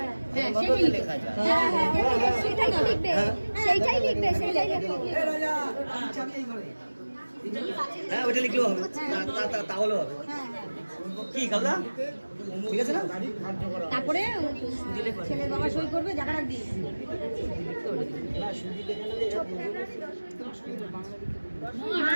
লেখা যায়। হ্যাঁ, ওটা লিখলেও হবে, তাহলেও হবে। কি খালদা, ঠিক আছে না? তারপরে ছেলের বাবা সই করবে, জায়গাটা দিয়ে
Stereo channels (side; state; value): both; inverted; correlation -1.00